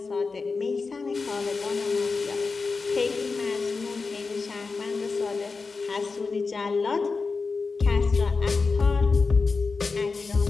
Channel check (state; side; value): quieter; right; 4.4 dB